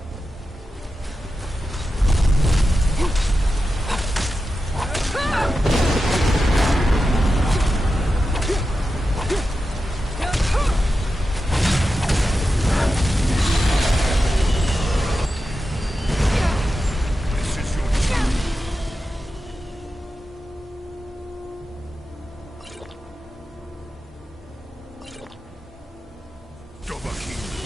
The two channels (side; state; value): both; normal; correlation 0.91